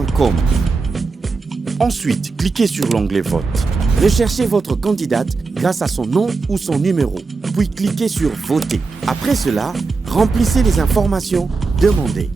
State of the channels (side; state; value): left; quieter; 4.2 dB